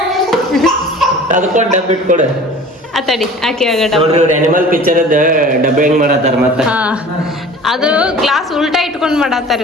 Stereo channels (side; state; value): both; normal; correlation 0.43